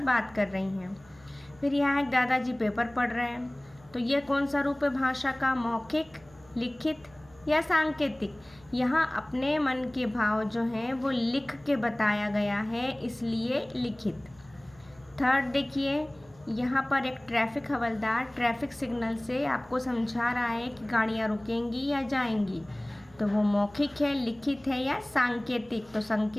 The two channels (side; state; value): right; noise; hum, 26 dB below the sound